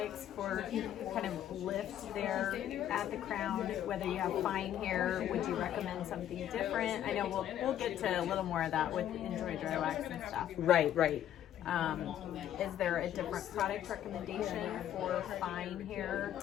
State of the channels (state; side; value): quieter; right; 11.1 dB